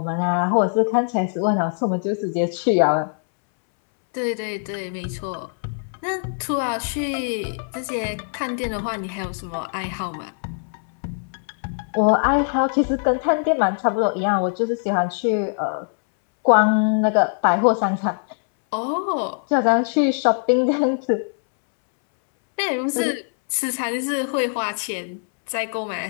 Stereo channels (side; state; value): right; silent; 64 dB below the other